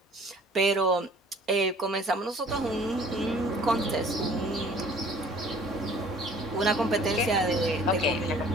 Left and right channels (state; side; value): normal; both; correlation 0.52